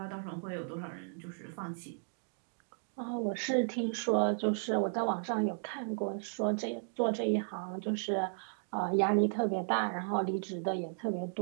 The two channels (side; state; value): left; silent; digital silence